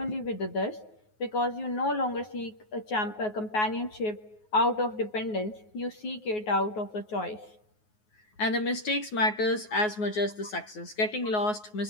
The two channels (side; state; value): right; late; 9.4 ms